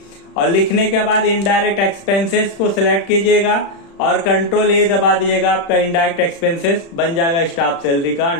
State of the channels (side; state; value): right; late; 36 ms